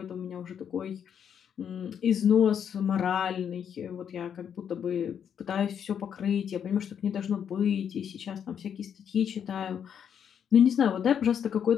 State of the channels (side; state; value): right; quieter; 8.2 dB